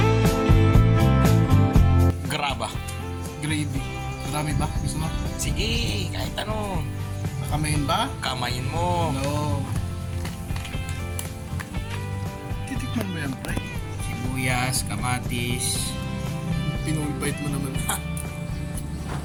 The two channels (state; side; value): identical; both; correlation 1.00